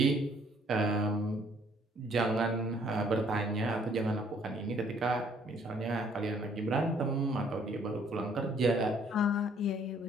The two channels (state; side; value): normal; both; correlation 0.62